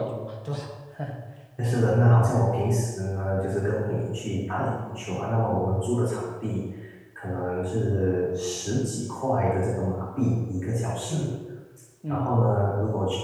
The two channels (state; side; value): identical; both; correlation 1.00